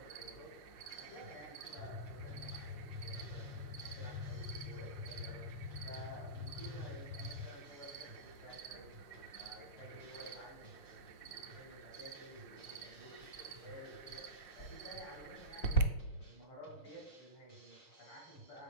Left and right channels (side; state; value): right; late; 5.7 ms